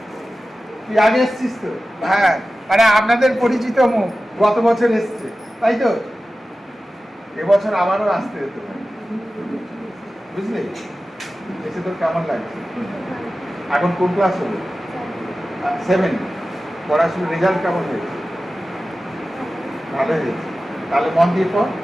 তুই আগে এসছিস তো? হ্যাঁ, মানে আপনাদের পরিচিত মুখ, গত বছর এসছে, তাই তো? এবছর আবারও আসতে হতো, বুঝলি? এসে তোর কেমন লাগছে? এখন কোন ক্লাস হলো? 7। পড়াশোনার রেজাল্ট কেমন হয়েছে? ভালো হয়েছে। তাহলে মন দিয়ে পড়,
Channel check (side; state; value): both; normal; correlation 0.95